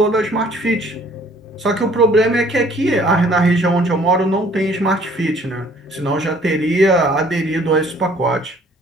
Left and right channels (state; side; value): normal; both; correlation 0.57